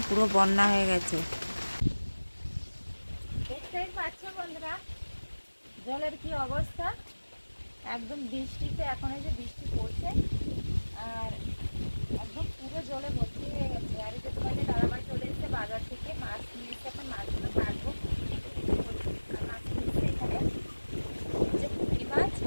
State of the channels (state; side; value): inverted; both; correlation -1.00